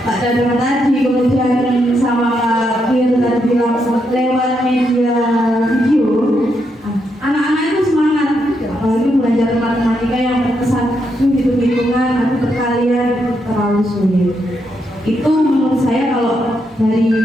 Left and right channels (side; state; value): both; normal; correlation 0.80